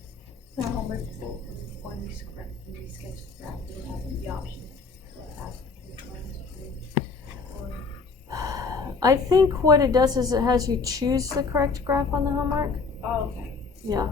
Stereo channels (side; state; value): right; quieter; 4.5 dB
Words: When we sketch the graph, we have the option to ask I think what it does is it has you choose the correct graph on the homework. Oh, okay. Yeah.